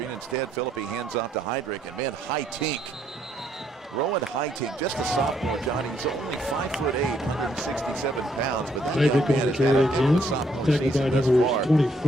Instead, Philippi hands off to Heydrich. And man, Hightink. Rowan Hightink, just a sophomore, Johnny. He's only 5'8", 167 pounds, but that young man has had a good sophomore season thus far. And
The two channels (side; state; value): both; normal; correlation 0.71